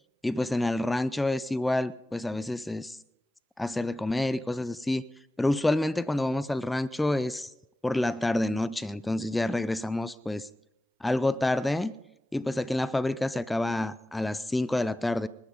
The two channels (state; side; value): normal; both; correlation 0.96